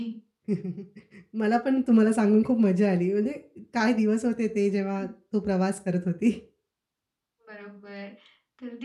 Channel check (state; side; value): identical; both; correlation 1.00